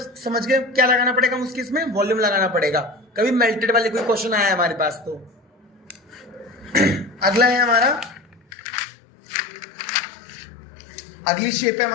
समझ गए क्या लगाना पड़ेगा उसके, इसमें वॉल्यूम लगाना पड़ेगा। कभी मेल्टेड वाले कोई क्वेश्चन आया है हमारे पास तो। अगला है हमारा, अगली शेप है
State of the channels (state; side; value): drops out; right; at 8.4 s